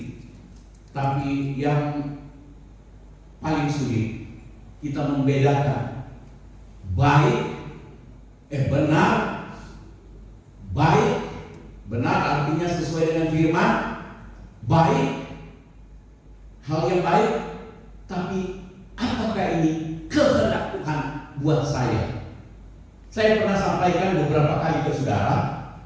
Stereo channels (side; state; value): both; identical; correlation 1.00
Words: Tapi yang paling sulit kita membedakan benar artinya sesuai dengan firman, baik, hal yang baik, tapi apakah ini kehendak Tuhan buat saya? Saya pernah sampaikan beberapa kali ke saudara